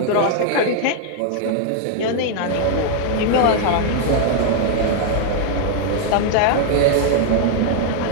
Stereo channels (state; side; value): different; both; correlation 0.00